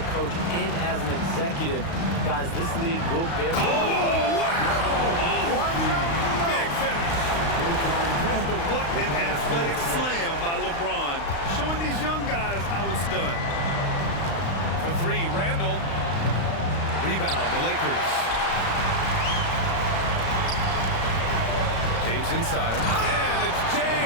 coach and as an executive. Guys, this league will bear... Oh, wow! Big finish! What an athletic slam by LeBron, showing these young guys how it's done. For three, Randall. Rebound, the Lakers. James inside. And it's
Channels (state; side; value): late; right; 35 ms